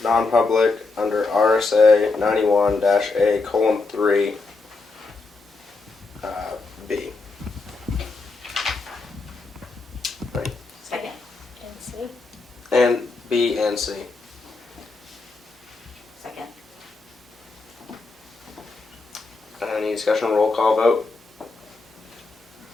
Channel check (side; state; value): right; quieter; 3.8 dB